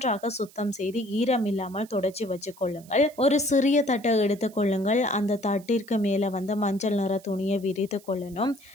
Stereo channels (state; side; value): noise; right; hiss, 24 dB below the sound